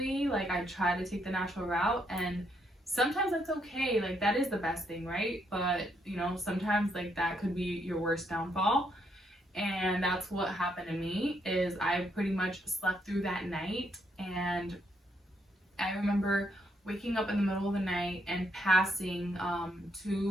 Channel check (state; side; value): normal; both; correlation 0.75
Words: like, I try to take the natural route, and sometimes that's okay. Like, that is the best thing, right? But sometimes like that could be your worst downfall. And that's what happened to me. Is I pretty much slept through that night, and I remember waking up in the middle of the night and passing